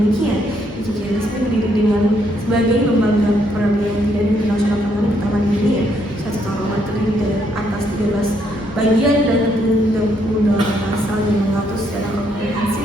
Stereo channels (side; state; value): both; normal; correlation 0.73